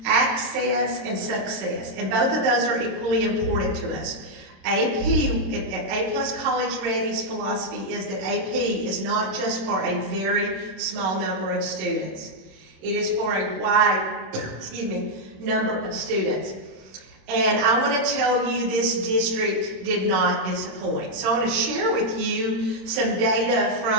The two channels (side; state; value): left; late; 27 ms